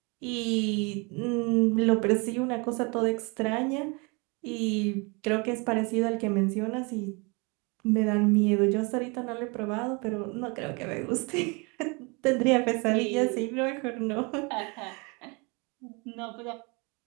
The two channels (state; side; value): quieter; left; 30.1 dB